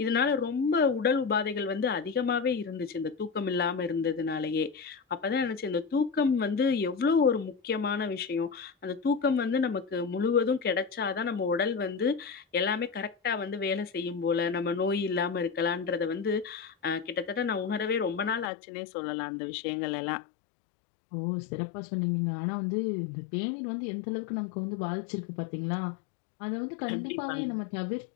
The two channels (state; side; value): drops out; right; at 18.5 s